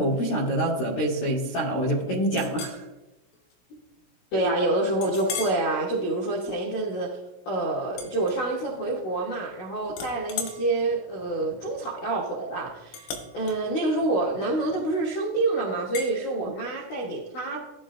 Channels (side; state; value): right; late; 17 ms